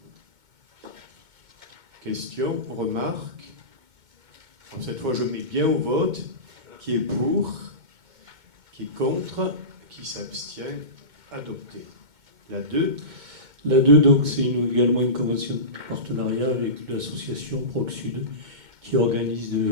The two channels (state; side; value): late; left; 2.2 ms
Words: Question, remarque. Alors, cette fois, je mets bien au vote. Qui est pour? Qui est contre? Qui s'abstient? Adopté. La 2. La 2, donc, c'est également une convention de partenariat avec l'association Proc Sud qui organise